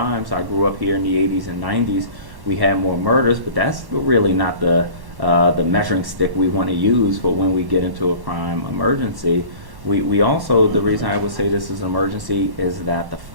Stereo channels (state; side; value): late; left; 1.1 ms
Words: I grew up here in the 80s and 90s. We had more murders, but that's really not the measuring stick we want to use for when we get into a crime emergency. We also, the reason I would say this is an emergency is that the